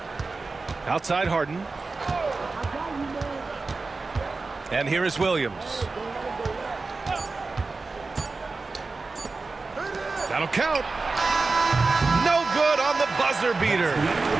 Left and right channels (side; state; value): left; quieter; 3.8 dB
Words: Outside Harden. And here is Williams. That'll count. No good on the buzzer beater.